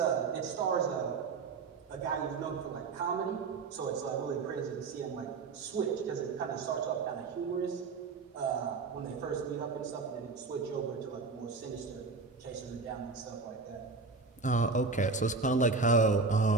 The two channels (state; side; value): quieter; left; 4.4 dB